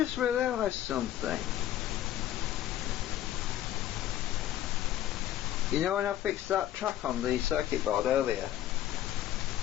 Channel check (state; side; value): quieter; right; 12.5 dB